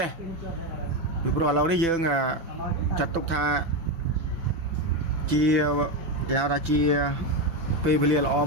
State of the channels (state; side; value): late; left; 6.0 ms